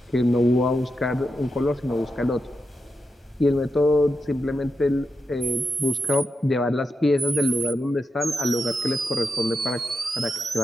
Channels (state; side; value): normal; both; correlation 0.87